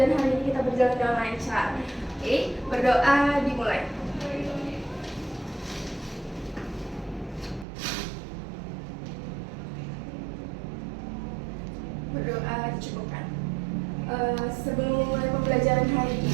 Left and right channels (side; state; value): left; drops out; at 7.7 s